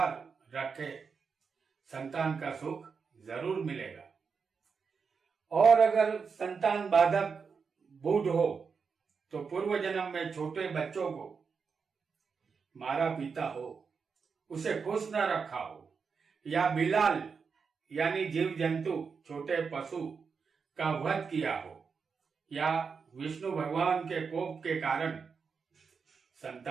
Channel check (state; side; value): quieter; left; 5.6 dB